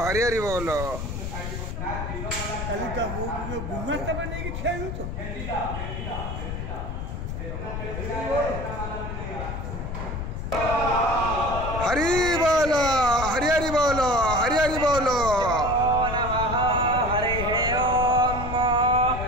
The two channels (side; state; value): left; noise; rumble, 5 dB below the sound